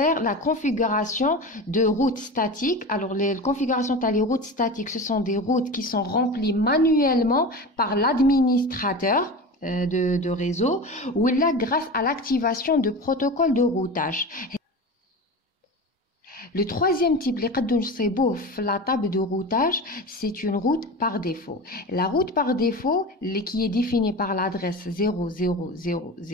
la configuration de routes statiques. Alors, les configurations des routes statiques, ce sont des routes qui sont remplies manuellement par l'administrateur de réseau ou là grâce à l'activation de protocoles de routage. Le troisième type, la table de routage, c'est une route par défaut. La route par défaut, qui est définie par l'adresse 0000,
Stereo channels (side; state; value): both; normal; correlation 0.29